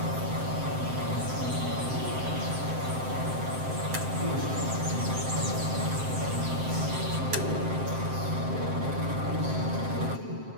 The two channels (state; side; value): late; left; 7.7 ms